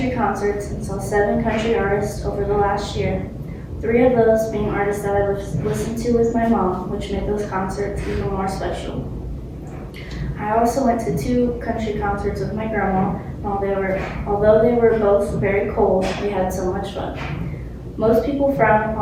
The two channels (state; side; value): identical; both; correlation 1.00